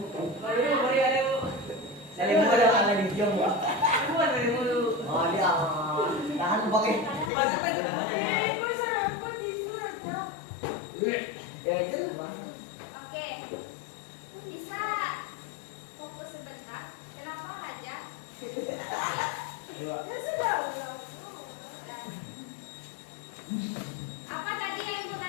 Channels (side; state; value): right; drops out; at 7.3 s